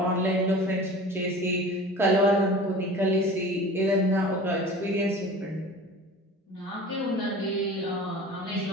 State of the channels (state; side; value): normal; both; correlation 0.39